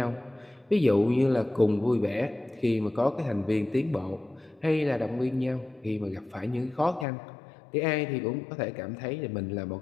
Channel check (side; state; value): right; drops out; at 7.1 s